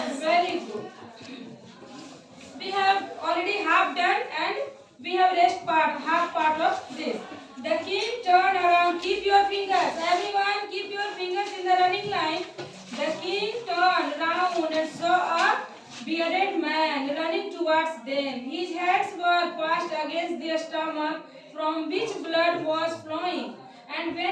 Very good. We have already half done and we have half part of this. The king turned around. Keep your fingers. Everyone keep your fingers in the running line. The king turned round and saw a bearded man running towards them. His hands were passed against their stomach from which blood was flowing. And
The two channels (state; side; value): identical; both; correlation 1.00